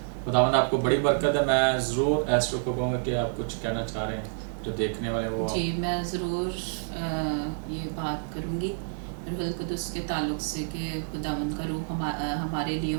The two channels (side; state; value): left; silent; digital silence